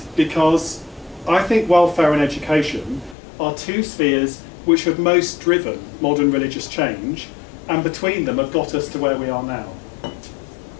because I think welfare and education are two spheres which have most driven modern religious change, and between them have got us to where we are now.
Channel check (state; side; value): drops out; right; at 3.2 s